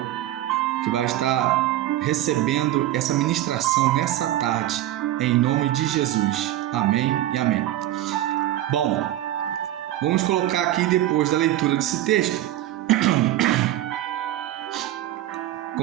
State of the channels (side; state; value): left; quieter; 13.9 dB